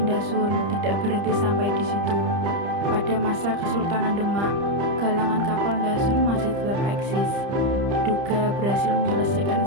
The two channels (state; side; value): late; left; 30 ms